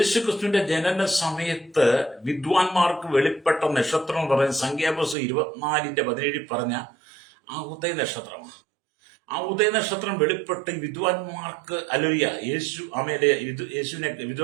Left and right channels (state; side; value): drops out; left; at 5.2 s